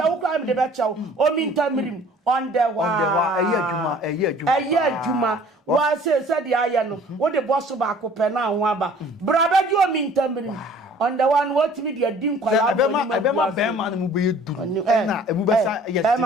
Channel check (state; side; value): normal; both; correlation 0.51